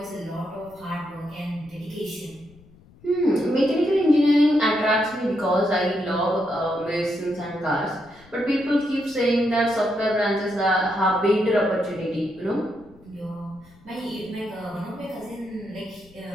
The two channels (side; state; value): left; noise; rumble, 26 dB below the sound